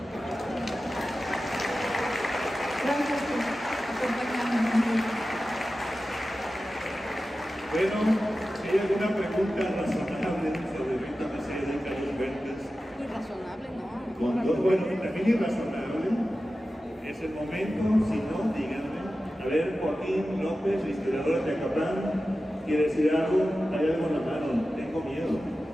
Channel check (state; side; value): normal; both; correlation 0.94